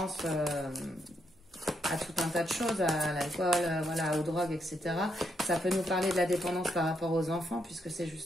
à tout un tas de choses, à l'alcool, voilà, aux drogues, etc. Ça peut nous parler de la dépendance par rapport aux enfants, puisque c'est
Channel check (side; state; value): both; normal; correlation 0.78